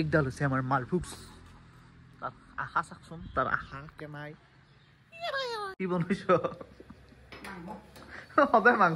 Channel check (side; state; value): both; identical; correlation 1.00